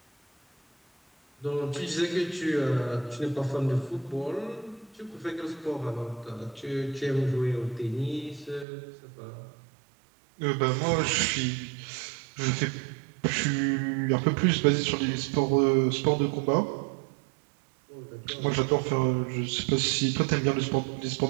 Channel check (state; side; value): drops out; left; at 8.7 s